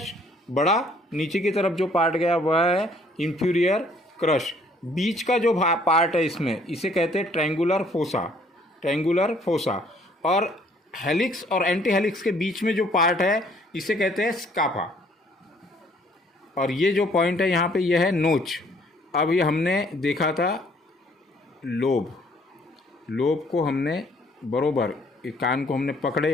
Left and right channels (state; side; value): normal; both; correlation 0.61